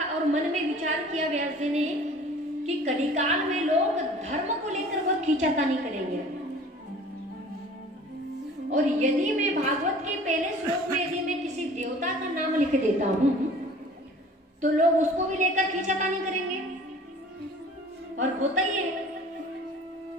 और मन में विचार किया व्यास जी ने कि कलिकाल में लोग धर्म को लेकर बहुत खींचातानी करेंगे, और यदि मैं भागवत के पहले श्लोक में यदि मैं किसी देवता का नाम लिख देता हूं, तो लोग उसको भी लेकर खींचातानी करेंगे। और होता ही है,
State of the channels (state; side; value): normal; both; correlation 0.47